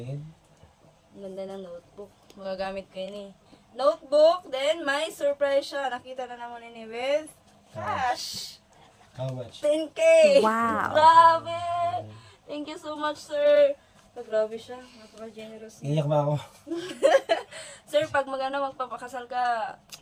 Ang ganda ng notebook. Magagamit ko yun eh. Notebook, then may surprise siya. Nakita na naman ini with cash. How much? 10K! Wow. Grabe! Thank you so much, sir. Grabe siya. Napaka-generous niya. Iyak ba ako? Sir, pag magpapakasal ka,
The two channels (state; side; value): identical; both; correlation 1.00